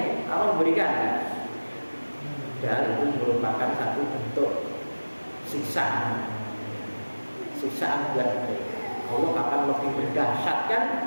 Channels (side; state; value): both; inverted; correlation -1.00